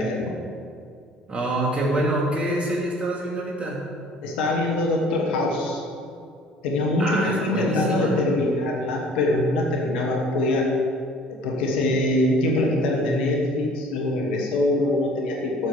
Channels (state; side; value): normal; both; correlation 0.51